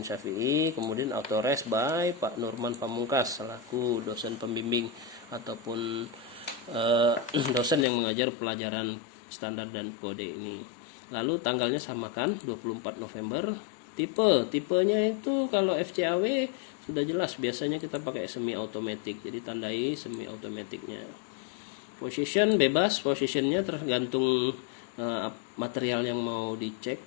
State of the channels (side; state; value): right; drops out; at 7.9 s